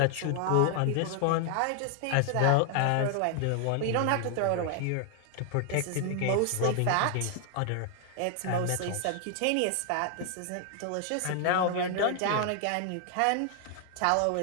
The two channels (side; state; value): both; different; correlation 0.00